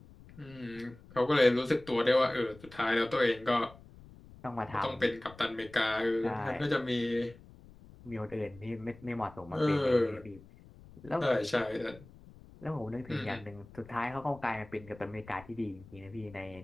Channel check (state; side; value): noise; left; rumble, 21 dB below the sound